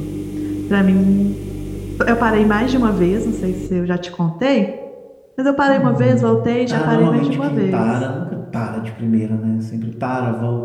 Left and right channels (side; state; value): both; identical; correlation 1.00